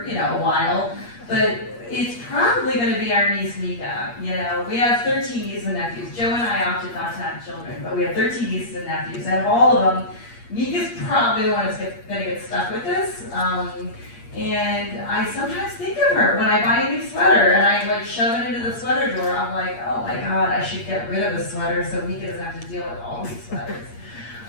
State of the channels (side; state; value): right; late; 8.5 ms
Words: a while, but it's probably gonna be our niece Mika. We have 13 nieces and nephews. Joe and I opted not to have children, but we have 13 nieces and nephews. And of all of them, Mika's probably the one that's gonna get stuck with this. And I sometimes think of her when I buy a new sweater and I shove it into the sweater drawer. I'm like, oh my God, I should get rid of the sweater so Mika doesn't have to deal with all these sweaters.